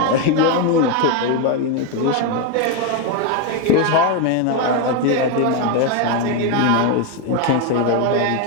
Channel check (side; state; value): both; different; correlation 0.02